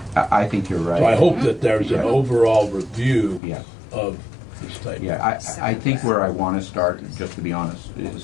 I think you're right. So I hope that there's an overall review of this type. Yeah, I think where I want to start, just to be honest, is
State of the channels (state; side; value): drops out; right; at 3.4 s